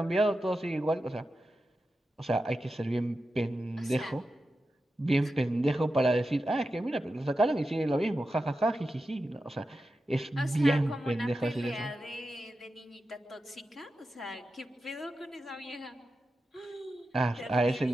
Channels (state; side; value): normal; both; correlation 0.91